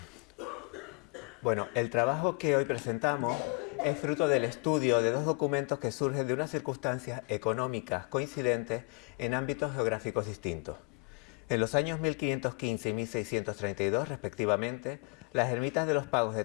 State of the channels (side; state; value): right; quieter; 33.0 dB